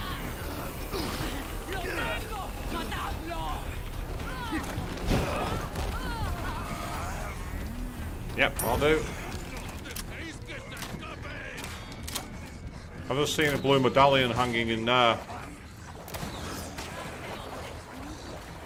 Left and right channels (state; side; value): identical; both; correlation 1.00